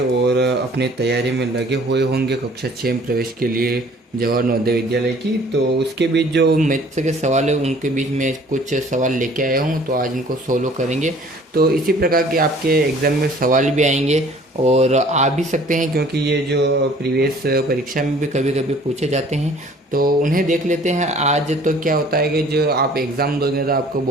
अपनी तैयारी में लगे हुए होंगे कक्षा 6 में प्रवेश के लिए जवाहर नवोदय विद्यालय की। तो उसके बीच जो मैथ्स के सवाल है उनके बीच में कुछ सवाल लेके आया हूँ, तो आज इनको सोल्व करेंगे। तो इसी प्रकार के आपके एग्ज़ाम में सवाल भी आएंगे और आ भी सकते हैं, क्योंकि ये जो प्रीवियस परीक्षा में भी कभी कभी पूछे जाते हैं, तो उन्हें देख लेते हैं। आज तो क्या होता है कि जो आप एग्ज़ाम दोगे तो आपको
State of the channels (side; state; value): both; normal; correlation 0.53